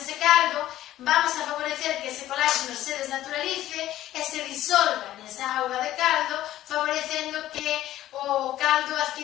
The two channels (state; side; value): quieter; right; 13.8 dB